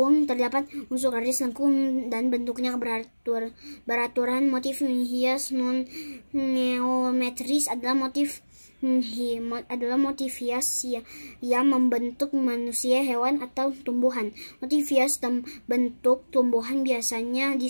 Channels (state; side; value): inverted; both; correlation -1.00